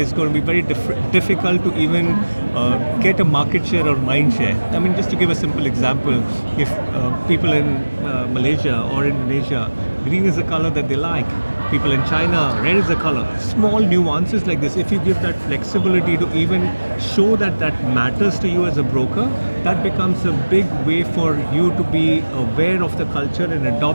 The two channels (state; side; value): inverted; both; correlation -1.00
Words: going to be very difficult to even get a market share or mind share. I mean, just to give a simple example, if people in Malaysia or Indonesia, green is the color that they like. People in China, red is the color. Small nuances like this, if you give that flexibility to even show that that matters to you as a broker, that becomes a big way for you to be aware of the culture and